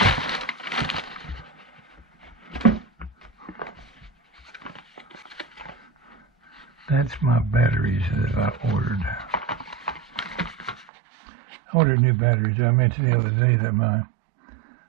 That's my batteries that I ordered. I ordered new batteries. I mentioned the other day that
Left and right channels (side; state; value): left; drops out; at 10.9 s